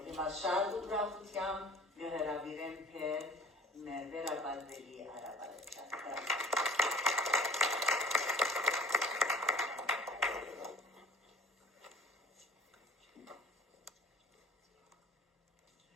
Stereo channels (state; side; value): normal; both; correlation 0.48